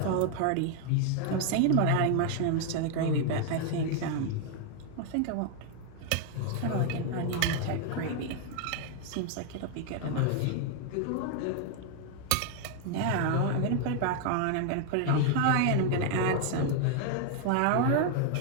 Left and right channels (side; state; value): both; different; correlation 0.00